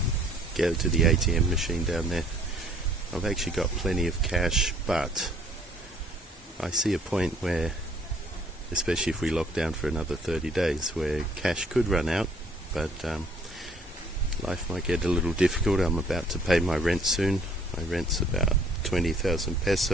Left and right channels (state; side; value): normal; both; correlation 0.59